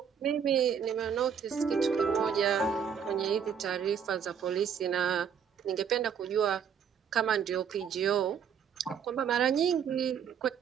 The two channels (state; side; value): quieter; left; 7.5 dB